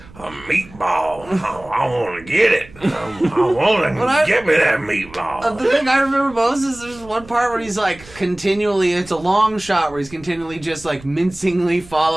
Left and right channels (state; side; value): noise; right; rumble, 21 dB below the sound